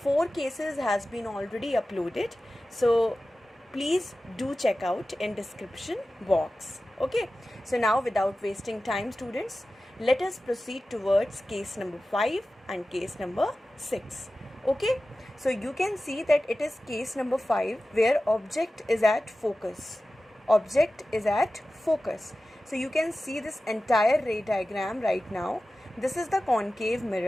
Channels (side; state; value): both; normal; correlation 0.95